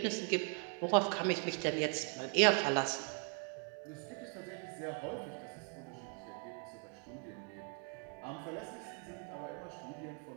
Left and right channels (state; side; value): quieter; left; 38.4 dB